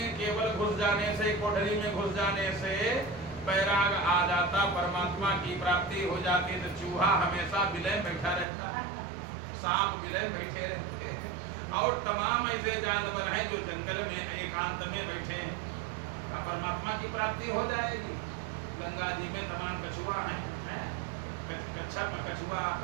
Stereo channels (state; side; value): drops out; left; at 8.5 s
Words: केवल घुस जाने से, कोठरी में घुस जाने से बैराग आ जाता, परमात्मा की प्राप्ति हो जाती, तो चूहा हमेशा विलय बैठा रहता, सांप विलय बैठे रहते हैं, और तमाम ऐसे जानवर हैं जो जंगल में एकांत में बैठे हैं, का परमात्मा की प्राप्ति हो जाएगी। गंगा जी में तमाम कछुआ हैं, कच्छप, कछुआ